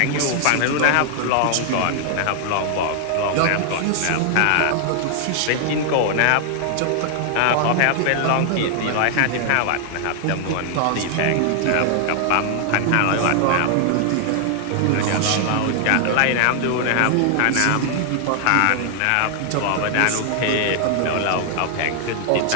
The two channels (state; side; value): different; both; correlation 0.00